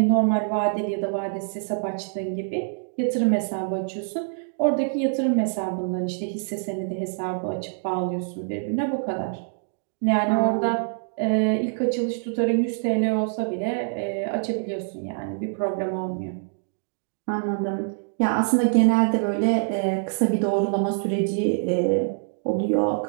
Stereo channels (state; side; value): silent; left; digital silence